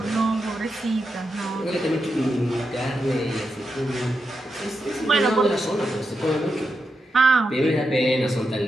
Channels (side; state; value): both; normal; correlation 0.87